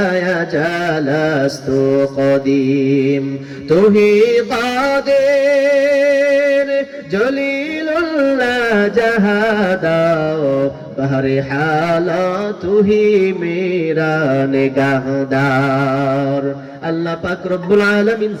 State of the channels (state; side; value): identical; both; correlation 1.00